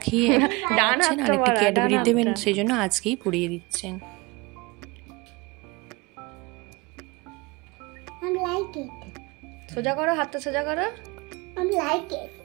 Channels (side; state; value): left; quieter; 24.7 dB